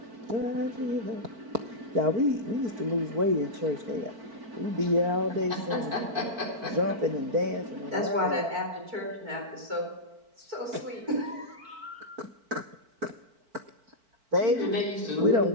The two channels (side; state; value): left; late; 4.5 ms